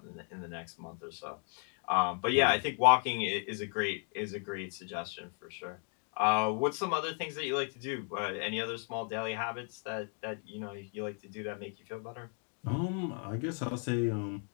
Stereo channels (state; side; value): quieter; right; 39.9 dB